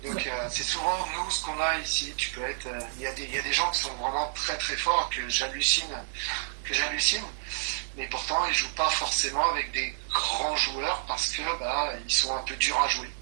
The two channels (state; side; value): silent; left; digital silence